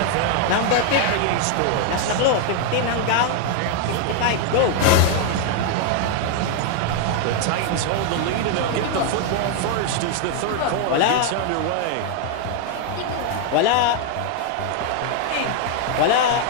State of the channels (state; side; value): different; both; correlation 0.00